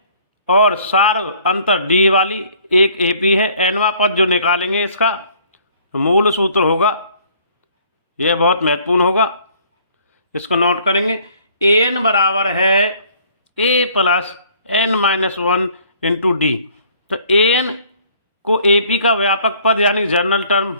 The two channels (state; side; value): inverted; both; correlation -0.58